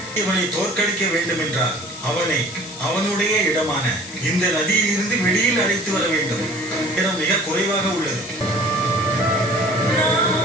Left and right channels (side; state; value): left; noise; hiss, 13 dB below the sound